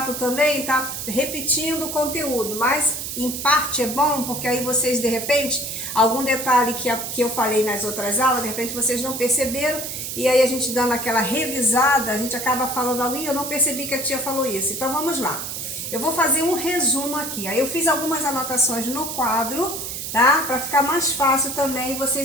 também, tá repetindo o conteúdo, mas em parte é bom, porque aí vocês, de repente, algum detalhe que eu falei nas outras aulas, de repente vocês não perceberam, e aí a gente dando aquela revisada, a gente acaba falando algo, e eu não percebi que a tia falou isso. Então vamos lá. Eu vou fazer um resumo aqui. Aí eu fiz algumas anotações no quadro, tá? Para ficar mais fácil também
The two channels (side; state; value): right; noise; hiss, 6 dB below the sound